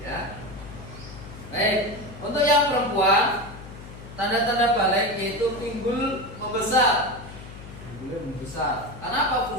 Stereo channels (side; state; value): left; noise; hum, 14 dB below the sound